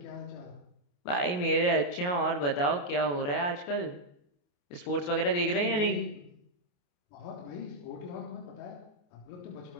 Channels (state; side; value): late; right; 28 ms